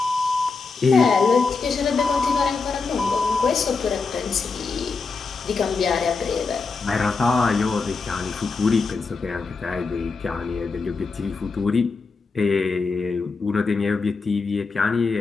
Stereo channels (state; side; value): quieter; right; 4.5 dB